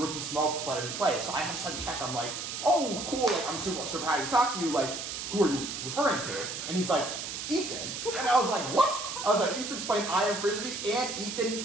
Smoke player he played. So I have to check, I'm like, oh, cool, like, I'm super happy to talk to you, like, who are you referring to? And he's like, Ethan. And I was like, what? I was like, Ethan's playing IM Frisbee, and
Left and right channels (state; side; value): noise; right; hiss, 6 dB below the sound